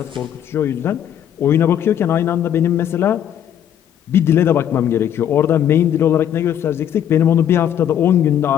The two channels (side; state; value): right; quieter; 9.9 dB